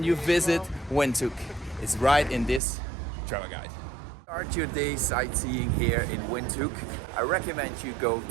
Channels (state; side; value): drops out; left; at 2.6 s